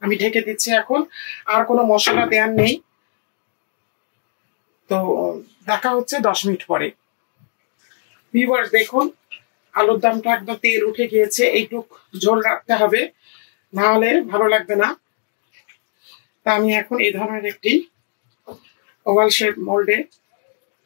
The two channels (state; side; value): silent; right; 59 dB below the other